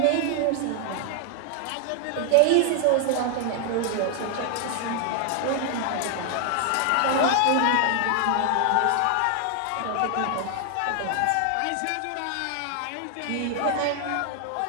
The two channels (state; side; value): different; both; correlation 0.00